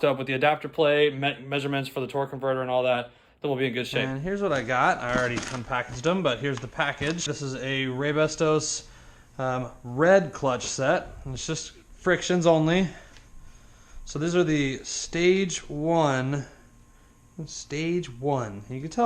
up with the adapter plate, measurements for the torque converter and all that, then we'll be in good shape. And here's what I got. I already unpackaged them, but here's the package. This is a Raybestos red clutch set, and it's just frictions only. So these are the stage one. Stage one. You can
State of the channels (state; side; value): identical; both; correlation 1.00